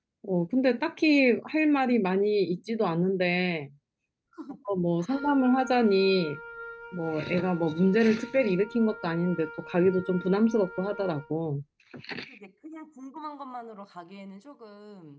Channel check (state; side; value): identical; both; correlation 1.00